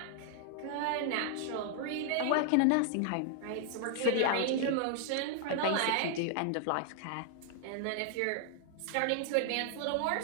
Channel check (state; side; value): different; both; correlation 0.00